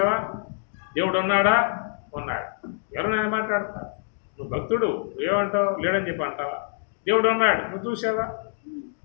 దేవుడు ఉన్నాడా? ఉన్నాడు. ఎవరైనా మాట్లాడతా? నువ్వు భక్తుడు, నువ్వేమంటావు? లేడని చెప్పి అంటావా? దేవుడు ఉన్నాడు, నువ్వు చూసావా?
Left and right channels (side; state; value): right; silent; digital silence